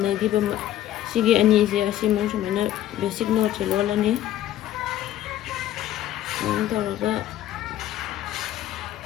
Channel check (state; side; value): quieter; right; 12.7 dB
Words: ba sige ani je asimong sumana basic note lolani. Taro ka